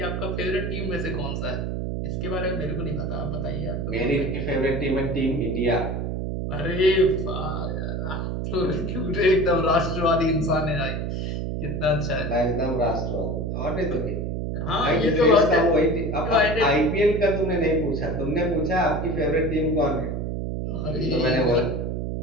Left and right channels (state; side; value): noise; right; hum, 2 dB below the sound